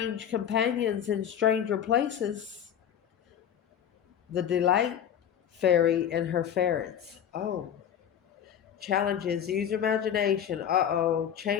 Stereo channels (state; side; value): quieter; right; 9.2 dB